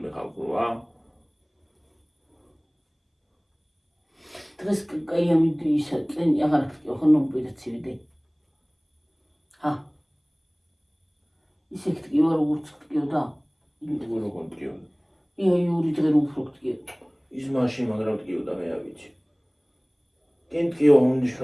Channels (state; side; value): identical; both; correlation 1.00